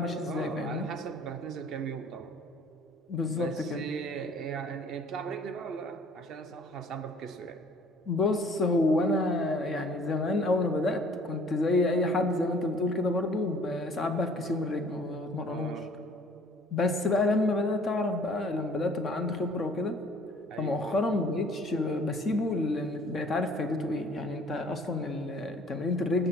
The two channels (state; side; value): normal; both; correlation 0.54